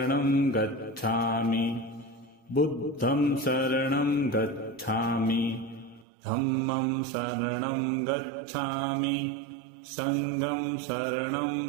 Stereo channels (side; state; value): left; drops out; at 6.1 s